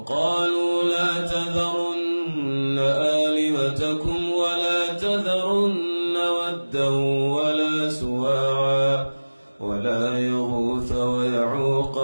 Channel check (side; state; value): both; inverted; correlation -1.00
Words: لا تذرن آلهتكم ولا تذرن ودا ولا سواعا ولا يغوث ويعوق